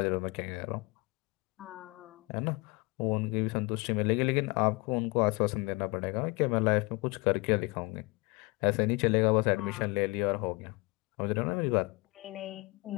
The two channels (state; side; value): quieter; right; 26.5 dB